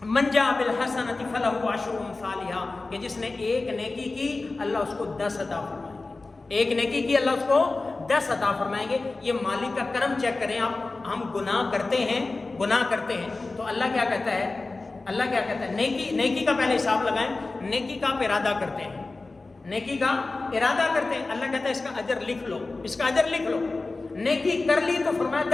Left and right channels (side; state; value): right; quieter; 3.5 dB